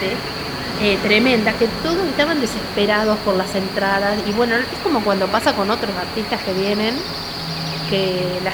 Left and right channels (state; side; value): identical; both; correlation 1.00